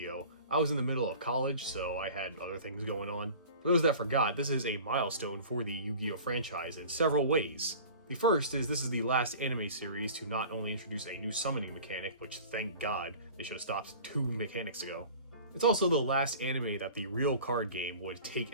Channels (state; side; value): inverted; both; correlation -0.42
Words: I was in the middle of college, so I had other things going on. For those that forgot, this is a milestone for the Yu-Gi-Oh! Franchise in several ways. The first is this is the last anime series to not only introduce a new summoning mechanic, which thank God, they should have stopped 2 mechanics ago. It's also the last anime that the real card game would